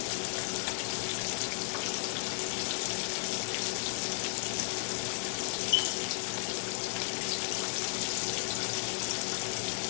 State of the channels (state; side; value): silent; right; 55 dB below the other